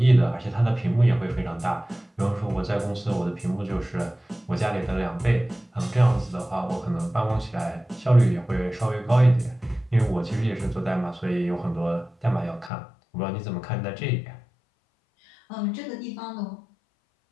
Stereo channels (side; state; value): right; drops out; at 12.7 s